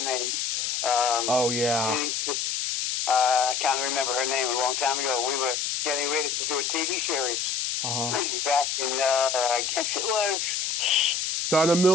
name? Oh, yeah. I can't remember her name. A long time ago, we were getting ready to do a TV series. Back in, I guess it was... Donna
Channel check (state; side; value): noise; left; hiss, 1 dB below the sound